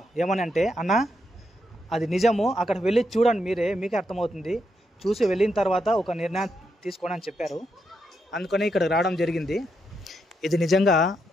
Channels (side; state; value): both; normal; correlation 0.81